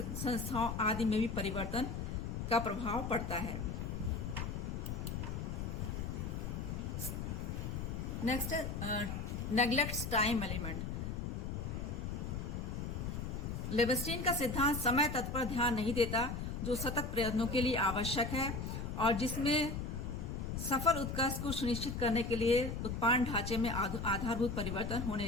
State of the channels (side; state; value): left; noise; rumble, 4 dB below the sound